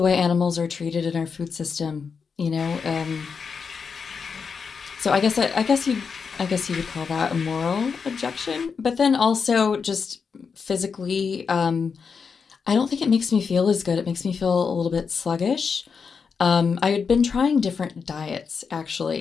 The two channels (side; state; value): right; quieter; 5.7 dB